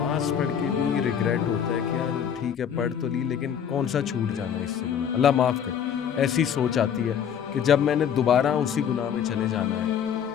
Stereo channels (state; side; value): quieter; right; 8.3 dB